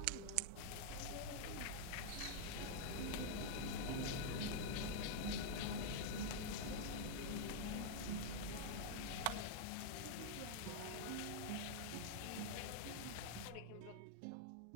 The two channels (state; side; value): different; both; correlation -0.01